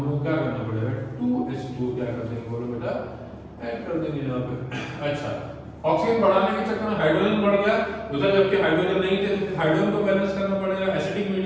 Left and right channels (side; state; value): both; identical; correlation 1.00